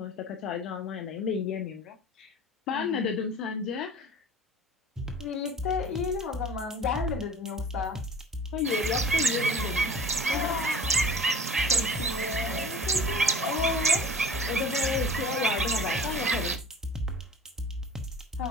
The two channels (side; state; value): both; normal; correlation 0.42